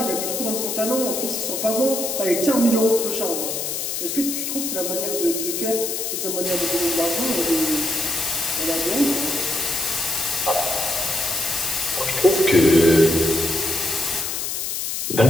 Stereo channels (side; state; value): left; noise; hiss, 3 dB below the sound